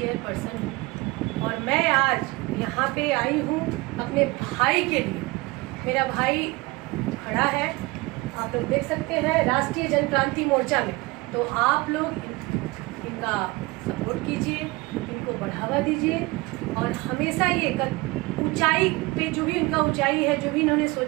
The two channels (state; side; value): quieter; left; 23.4 dB